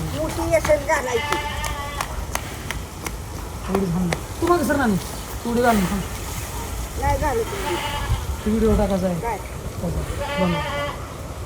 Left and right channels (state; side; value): identical; both; correlation 1.00